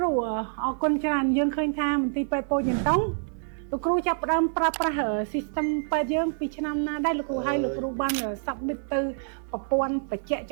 រូអរគុណច្រើនយើងឃើញថាមន្ទីរពេទ្យពោធិ៍ចតុងលោកគ្រូចាប់ផ្ដើមប្រើប្រាស់ system ពេទ្យយើងពីឆ្នាំណាដែរលោកគ្រូហើយលោកគ្រូបាន submit ទៅប្រព័ន្ធបច្ចេក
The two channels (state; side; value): silent; left; digital silence